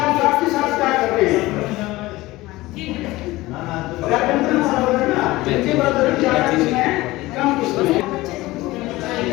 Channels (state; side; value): quieter; right; 19.0 dB